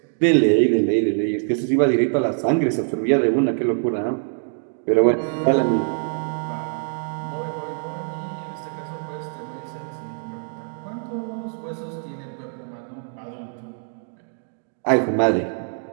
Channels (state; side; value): silent; left; digital silence